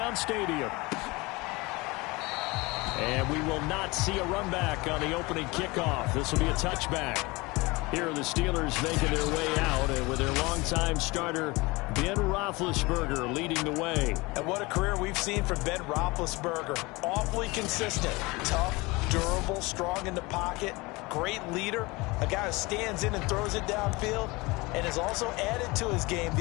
Stadium. And we will not see a run back on the opening kickoff. This will be a touchback. Here are the Steelers making their way out, and with their longtime starter, Ben Roethlisberger, leading the way. And what a career we've seen from Ben Roethlisberger. Awfully consistent, tough, durable, strong in the pocket, great leader, a guy who stands in and throws it downfield, and has also added to his game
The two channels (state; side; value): quieter; right; 23.9 dB